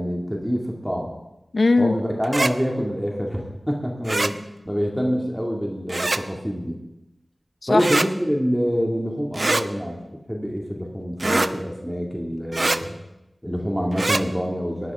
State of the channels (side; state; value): both; normal; correlation 0.98